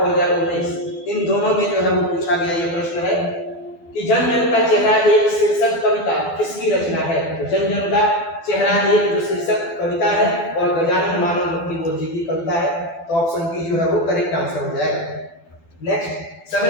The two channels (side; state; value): right; late; 12 ms